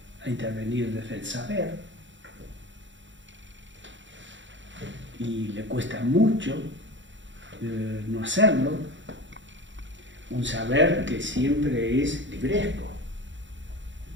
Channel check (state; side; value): late; left; 0.54 ms